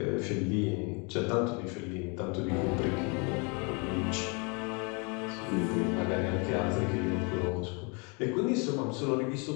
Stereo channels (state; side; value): quieter; right; 32.6 dB